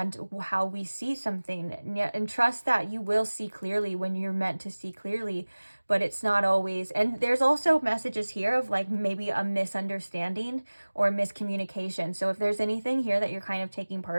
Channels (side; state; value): both; inverted; correlation -1.00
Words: how we see something. And trust that you will see clearly when you're meant to see clearly, but it's not always. And there's also messages here of like maybe a misunderstanding or miscommunication. So if there's anything here that you're kind of taking